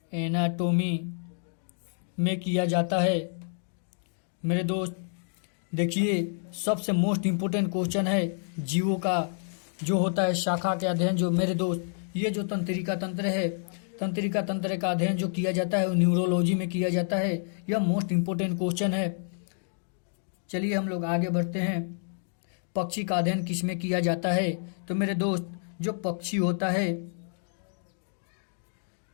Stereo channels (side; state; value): right; silent; digital silence